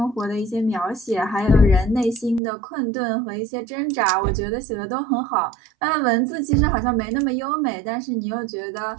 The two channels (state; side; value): drops out; left; at 2.4 s